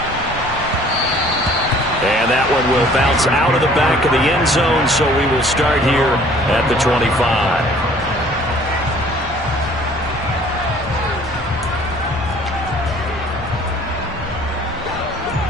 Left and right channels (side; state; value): both; normal; correlation 0.54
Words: And that one will bounce out of the back of the end zone, so we will start here at the 25.